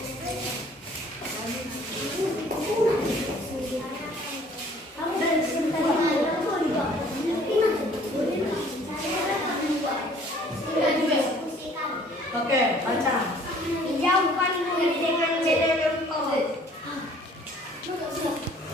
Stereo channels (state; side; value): normal; both; correlation 0.55